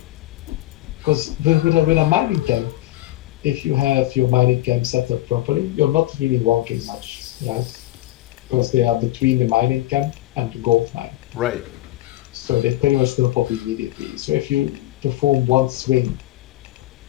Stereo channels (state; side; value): quieter; right; 16.5 dB